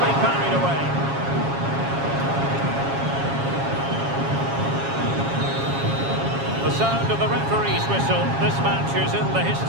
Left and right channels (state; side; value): late; left; 7.3 ms